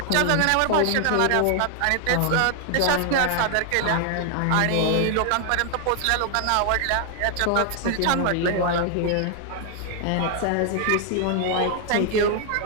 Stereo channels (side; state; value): both; different; correlation 0.00